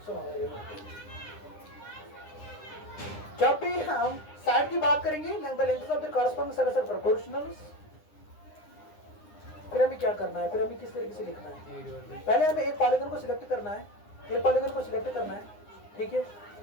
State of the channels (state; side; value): late; right; 9.8 ms